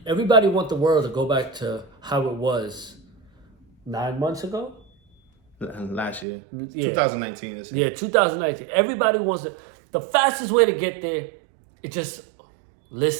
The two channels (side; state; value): left; drops out; at 6.2 s